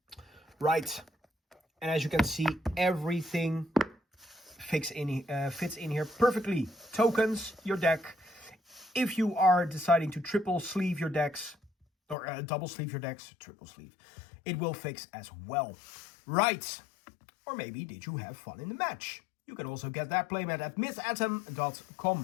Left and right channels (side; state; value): right; drops out; at 12.2 s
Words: Right. And as you can see, everything fits in here perfectly. Tokens, your deck. If you are deciding to triple sleeve your decks, or double sleeve your decks, triple sleeve, it will fix as well. Right. Or maybe did you have fun in the match? You can also get that playmat at